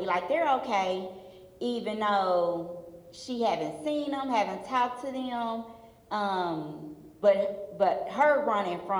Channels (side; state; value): both; identical; correlation 1.00